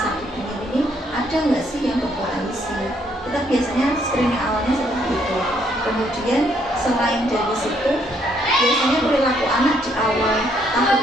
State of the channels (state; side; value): normal; both; correlation 0.70